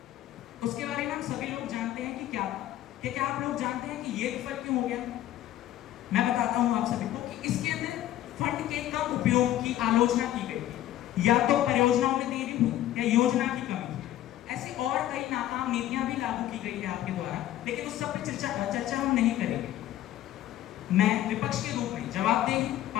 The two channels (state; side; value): quieter; right; 13.3 dB